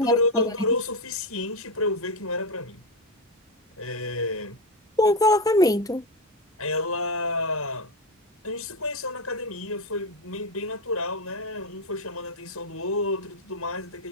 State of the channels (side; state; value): both; normal; correlation 0.11